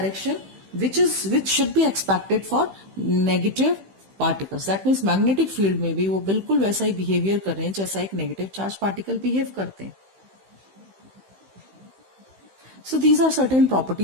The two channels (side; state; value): left; late; 15 ms